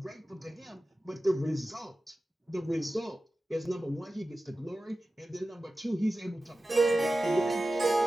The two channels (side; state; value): both; normal; correlation 0.95